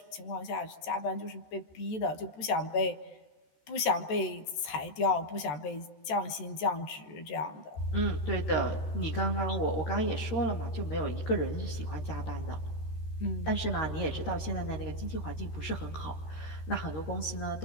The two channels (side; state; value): right; late; 13 ms